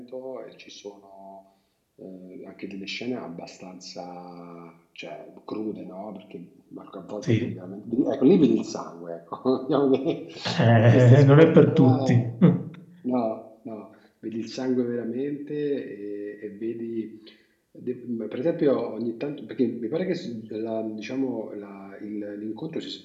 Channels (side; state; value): both; identical; correlation 1.00